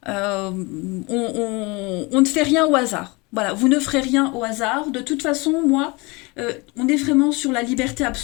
on ne fait rien au hasard. Voilà, vous ne ferez rien au hasard. De toute façon, moi, on est vraiment sur la liberté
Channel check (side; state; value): right; quieter; 26.2 dB